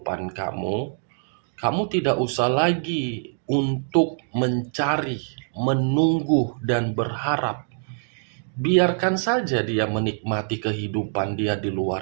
kamu, kamu tidak usah lagi untuk mencari, menunggu, dan berharap. Biarkan saja dia menikmati kehidupan dia di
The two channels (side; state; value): left; silent; digital silence